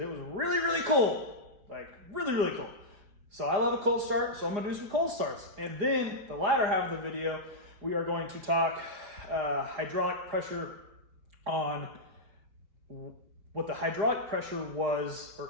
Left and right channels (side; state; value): left; late; 4.9 ms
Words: was really, really cold, like really, really cold. So I love a cold start, so I'm going to do some cold starts. And then the latter half of the video, we are going to talk hydraulic pressure on what the hydraulic pressure was